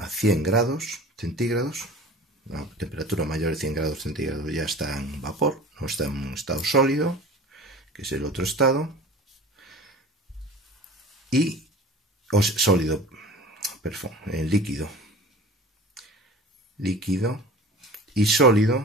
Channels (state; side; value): normal; both; correlation 0.40